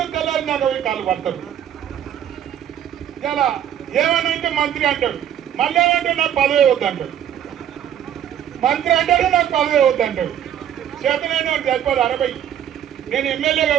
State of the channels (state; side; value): quieter; left; 10.2 dB